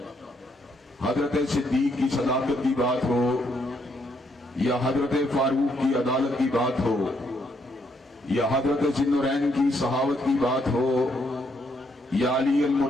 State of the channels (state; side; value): normal; both; correlation 0.74